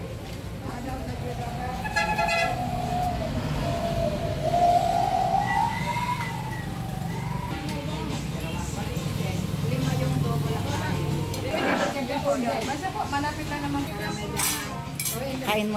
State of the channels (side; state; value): both; identical; correlation 1.00